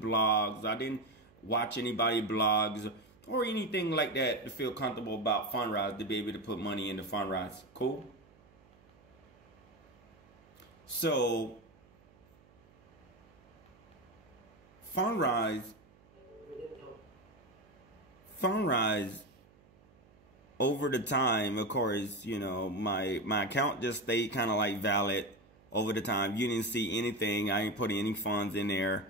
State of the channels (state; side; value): noise; right; hum, 28 dB below the sound